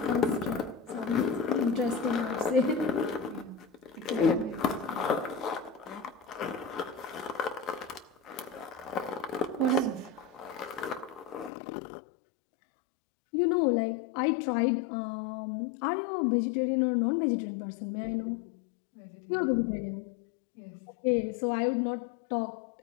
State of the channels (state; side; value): drops out; right; at 11.5 s